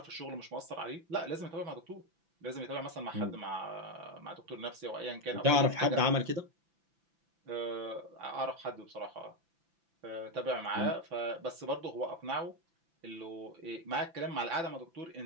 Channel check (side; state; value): left; late; 5.9 ms